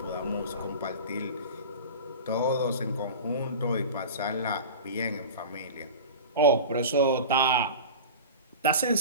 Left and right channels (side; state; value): both; inverted; correlation -0.32